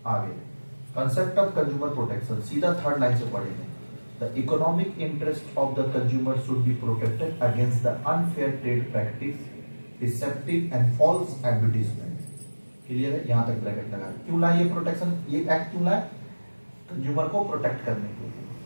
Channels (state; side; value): inverted; both; correlation -1.00